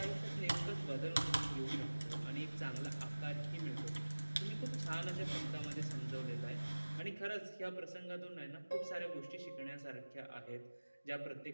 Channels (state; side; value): inverted; both; correlation -1.00